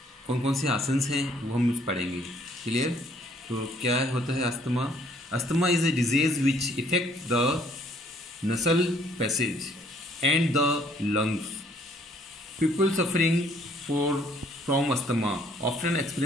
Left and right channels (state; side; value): normal; both; correlation 0.63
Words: कौन कौन से आसन्स हैं वो हम पढ़ेंगे। क्लियर? तो क्या होता है asthma? Asthma is a disease which effect the nasal passage and the lungs. People suffering from asthma often